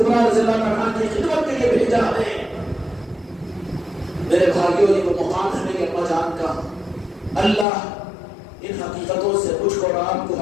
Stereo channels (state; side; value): drops out; right; at 7.7 s